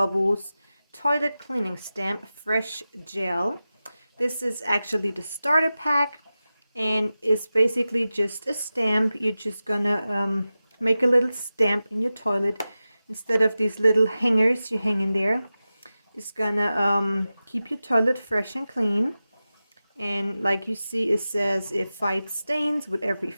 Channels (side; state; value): both; inverted; correlation -0.95